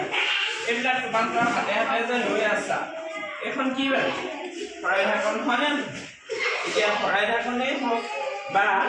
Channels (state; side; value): identical; both; correlation 1.00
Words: এইবিলাক তোমালোকৰ হাতে হাতে যে লৈ আছা, এইখন কি বাৰু শৰাই ঢাকন হয়নে? এতিয়া শৰাই ঢাকনেই হওক বা